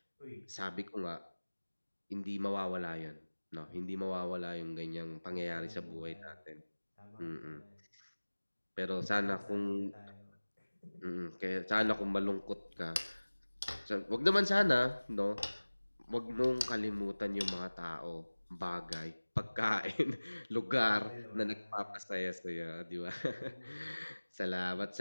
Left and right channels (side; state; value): both; inverted; correlation -1.00